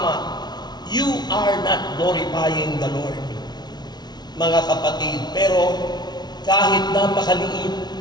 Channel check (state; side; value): late; right; 0.20 ms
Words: You are not glorifying the Lord, mga kapatid. Pero kahit napakaliit,